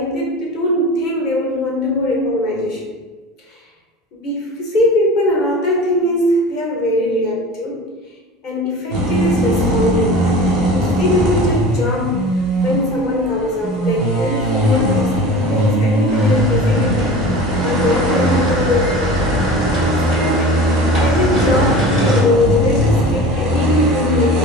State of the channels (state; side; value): normal; both; correlation 0.37